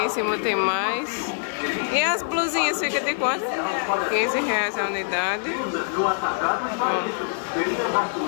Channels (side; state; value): right; silent; 62 dB below the other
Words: cima tem mais. E as blusinhas ficam de quanto? R$15 a unidade. Ó.